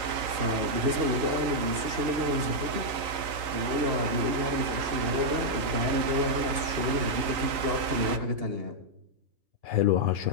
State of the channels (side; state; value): left; late; 3.9 ms